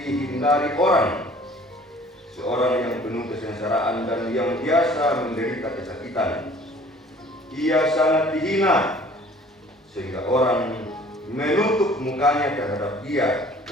orang, seorang yang penuh kesengsaraan dan yang biasa menderita kesakitan. Ia sangat dihina sehingga orang menutup mukanya terhadap dia,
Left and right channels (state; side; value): normal; both; correlation 0.51